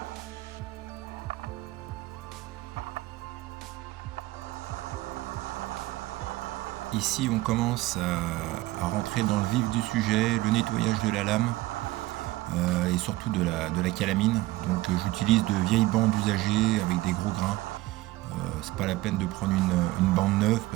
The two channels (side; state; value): left; quieter; 18.3 dB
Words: Ici on commence à rentrer dans le vif du sujet, le nettoyage de la lame et surtout de la calamine. Donc j'utilise de vieilles bandes usagées avec des gros grains. C'est pas la peine de prendre une bande neuve